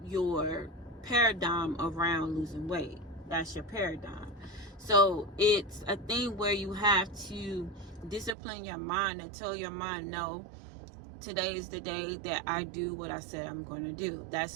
your paradigm around losing weight. That's your paradigm. So it's a thing where you have to discipline your mind and tell your mind, no, today is the day that I do what I said I'm going to do.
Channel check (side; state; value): left; drops out; at 8.3 s